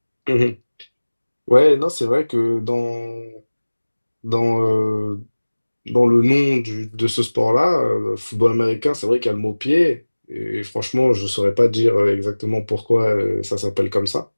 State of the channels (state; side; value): inverted; both; correlation -1.00